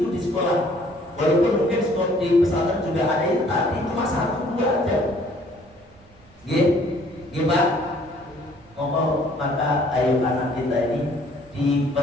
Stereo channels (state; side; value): noise; right; rumble, 27 dB below the sound